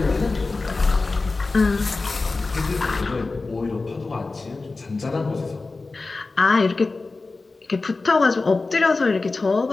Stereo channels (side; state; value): right; quieter; 3.6 dB